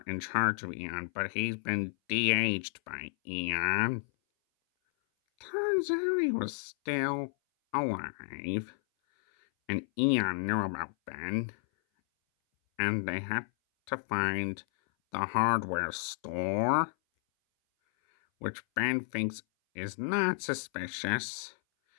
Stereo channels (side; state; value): right; silent; 57 dB below the other